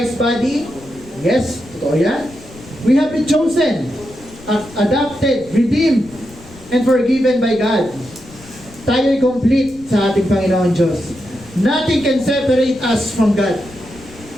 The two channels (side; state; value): left; noise; rumble, 21 dB below the sound